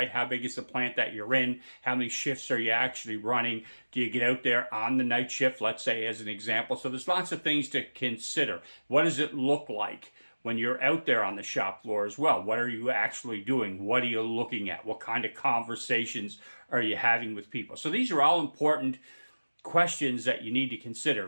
How big is the plant that you're in? How many shifts are you actually running? Do you get out there on the night shift, let's say, as an example? So there's lots of things to consider. What does it look like when you're out there on the shop floor as well? What are you actually doing? What are you looking at? What kind of conversations are you having with people? So these are all important questions that you need to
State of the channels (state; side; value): inverted; both; correlation -1.00